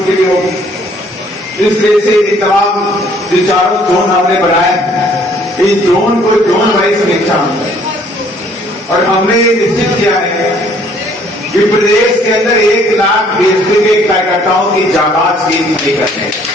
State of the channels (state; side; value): normal; both; correlation 0.61